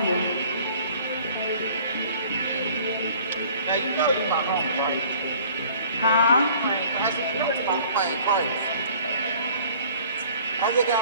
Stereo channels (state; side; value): inverted; both; correlation -0.52